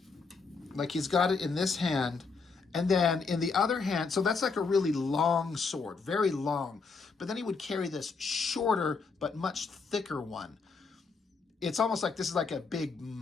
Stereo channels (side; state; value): right; quieter; 4.7 dB